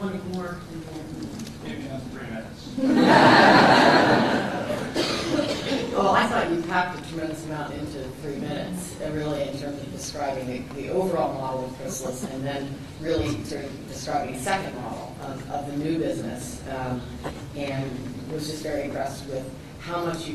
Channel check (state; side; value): identical; both; correlation 1.00